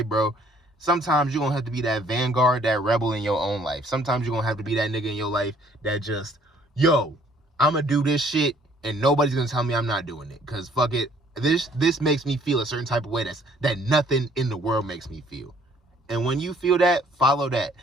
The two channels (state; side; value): normal; both; correlation 0.61